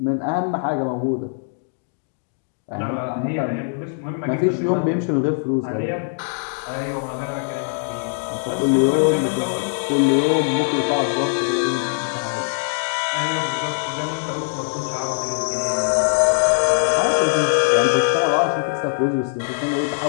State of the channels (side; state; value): right; silent; digital silence